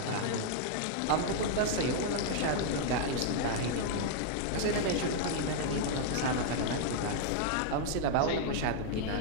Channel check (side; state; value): both; different; correlation 0.00